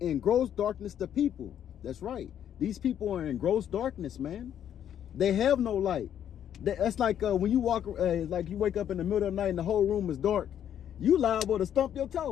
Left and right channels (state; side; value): quieter; right; 9.8 dB